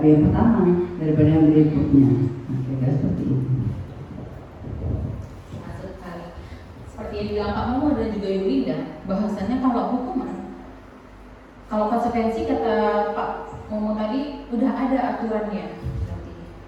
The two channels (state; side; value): identical; both; correlation 1.00